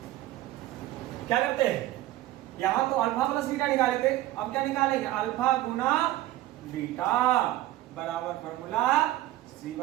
क्या करते हैं यहां तो अल्फा प्लस बीटा निकाले थे। अब क्या निकालेंगे अल्फा गुना बीटा बराबर फॉर्मूला सी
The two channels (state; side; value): quieter; left; 15.4 dB